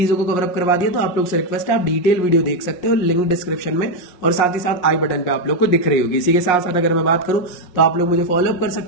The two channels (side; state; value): right; late; 5.5 ms